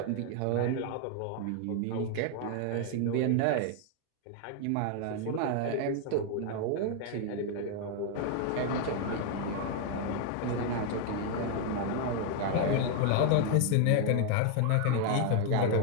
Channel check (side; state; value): both; different; correlation 0.00